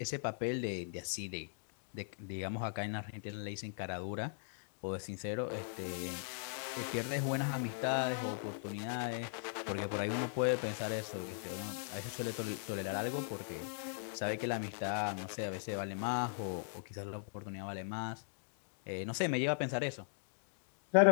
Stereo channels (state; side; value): silent; right; digital silence